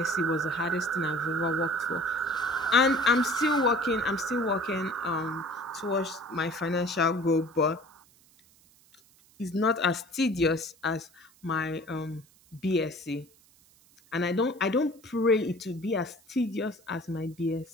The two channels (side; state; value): right; noise; hiss, 29 dB below the sound